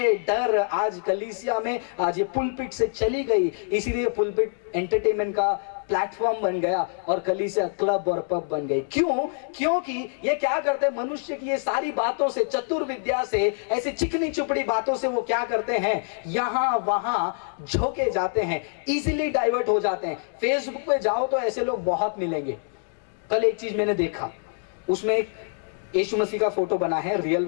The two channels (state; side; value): silent; right; 60 dB below the other